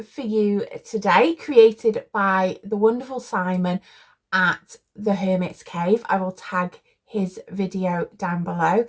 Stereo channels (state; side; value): identical; both; correlation 1.00